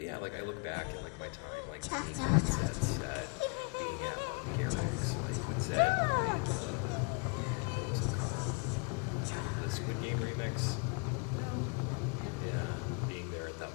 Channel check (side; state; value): right; quieter; 34.1 dB